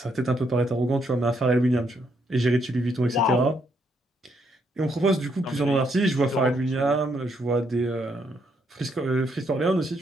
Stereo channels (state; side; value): normal; both; correlation 0.74